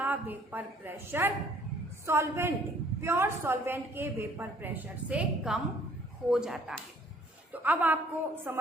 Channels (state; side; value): normal; both; correlation 0.59